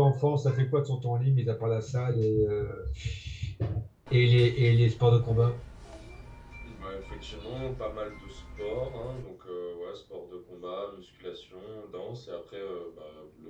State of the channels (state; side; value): identical; both; correlation 1.00